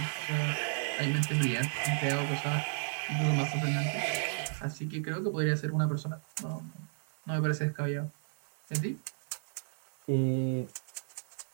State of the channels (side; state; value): left; silent; digital silence